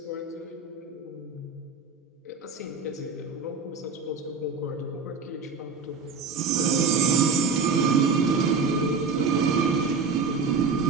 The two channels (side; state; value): left; quieter; 4.8 dB